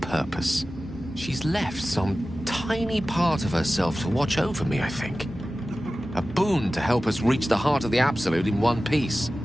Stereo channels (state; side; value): normal; both; correlation 0.95